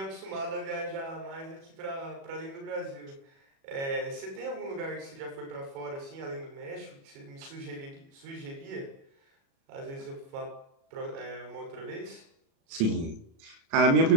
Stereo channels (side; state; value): left; late; 36 ms